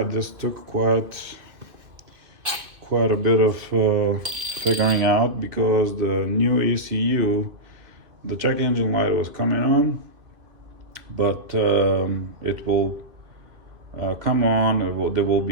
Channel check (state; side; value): late; left; 2.4 ms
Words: this took quite a bit of figuring out, because the new ECU, the check engine light was coming on, but it will come on, there will